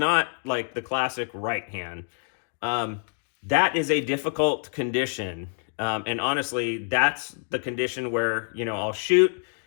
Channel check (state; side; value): silent; right; 56 dB below the other